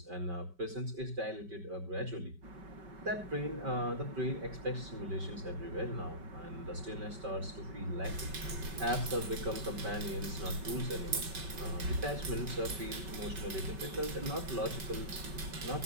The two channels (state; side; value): late; left; 5.2 ms